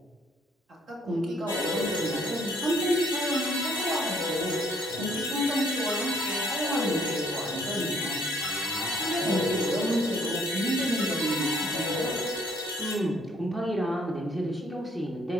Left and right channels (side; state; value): both; normal; correlation 0.64